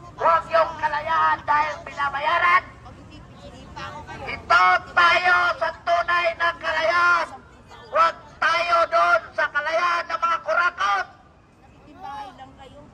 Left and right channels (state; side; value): identical; both; correlation 1.00